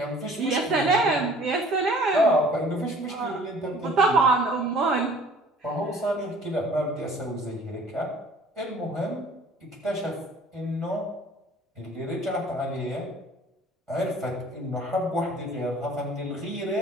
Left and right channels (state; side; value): normal; both; correlation 0.52